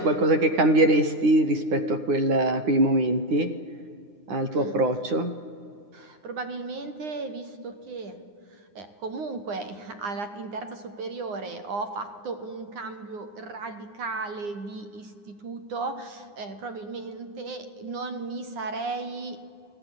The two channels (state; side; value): late; left; 9.8 ms